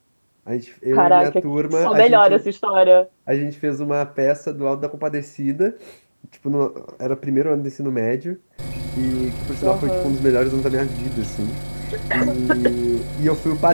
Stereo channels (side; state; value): both; inverted; correlation -1.00